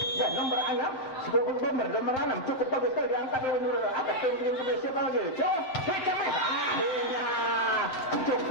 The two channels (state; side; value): late; right; 7.7 ms